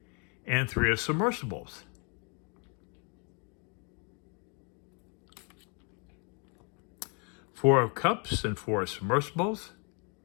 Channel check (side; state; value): right; quieter; 35.5 dB